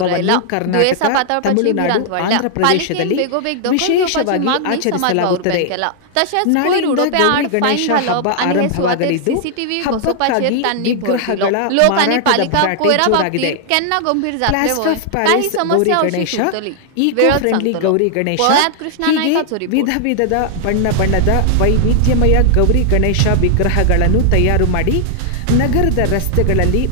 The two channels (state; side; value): different; both; correlation 0.00